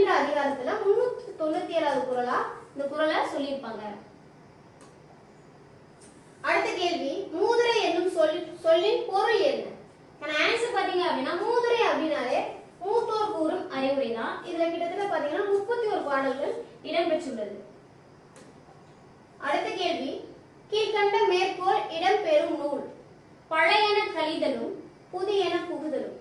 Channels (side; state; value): both; identical; correlation 1.00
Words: அதிகாரத்துல 397வது குறளா இந்த குறளை சொல்லியிருப்பாங்க. அடுத்த கேள்வி, மூதுரை என்னும் சொல்லின் பொருள் என்ன? ஆன்சர் பாத்தீங்க அப்படின்னா மூதுரை அப்படின்னாலே மூத்தோர் கூறும் அறிவுரை தான். இதுல கிட்டத்தட்ட பாத்தீங்கன்னா 31 பாடல்கள் இடம்பெற்றுள்ளது. அடுத்த கேள்வி, கீழ்கண்ட மேற்கோள் இடம்பெறும் நூல். பழையன கழிதலும் புதியன புகுதலும்.